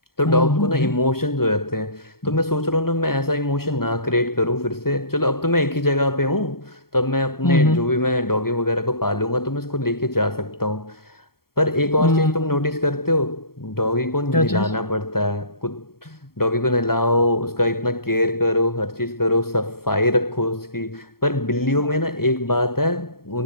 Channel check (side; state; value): right; late; 0.93 ms